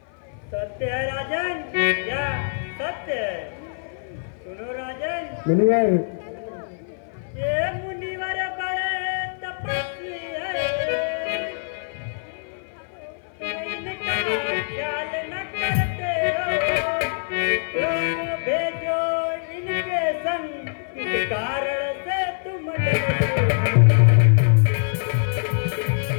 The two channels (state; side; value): silent; right; 56 dB below the other